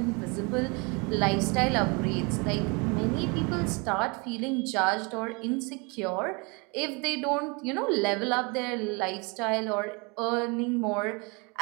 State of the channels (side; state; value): left; quieter; 30.0 dB